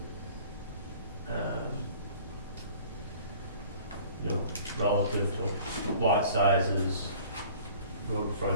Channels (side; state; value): both; inverted; correlation -0.49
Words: you know, relative to lot sizes, road